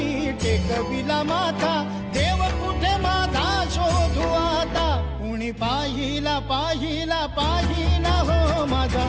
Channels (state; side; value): identical; both; correlation 1.00